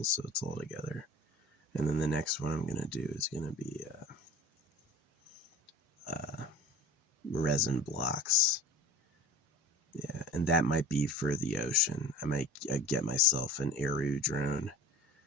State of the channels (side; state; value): both; normal; correlation 0.39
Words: So it's all together. And then the next one I'm going to do is going to be resin blocks. Yeah, and that might be for the ocean. I might get myself an Aru drone